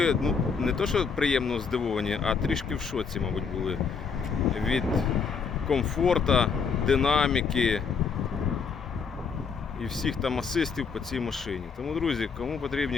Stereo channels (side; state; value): right; quieter; 5.7 dB